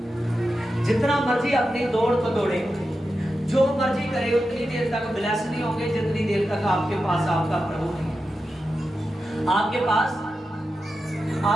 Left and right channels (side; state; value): both; normal; correlation 0.90